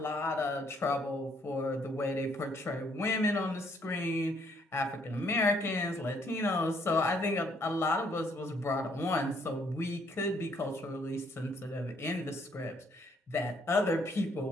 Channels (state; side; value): normal; both; correlation 0.68